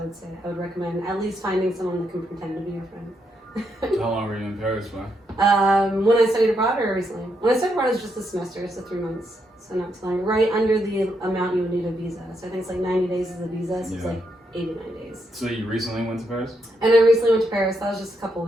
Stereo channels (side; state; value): both; normal; correlation 0.79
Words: say I would recommend at least finding someone that can pretend to be your friend. How long were you in Paris for? When I studied abroad or recently? When I studied abroad, it was just a semester, so 3 months. So not too long. Right under the amount you would need a visa. So I think it's like 90 days is a visa, so it's like 89 days. So you recently went to Paris? And I recently went to Paris. That was just a couple